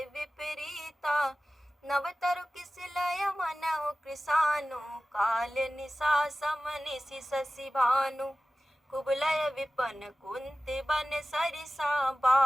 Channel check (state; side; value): normal; both; correlation 0.96